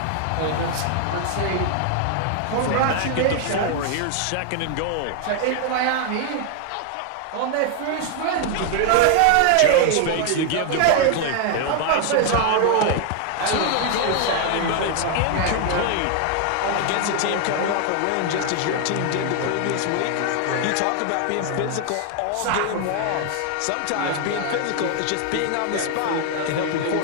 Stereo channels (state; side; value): different; both; correlation 0.00